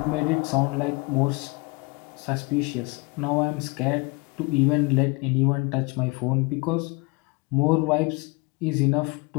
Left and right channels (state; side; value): quieter; right; 27.6 dB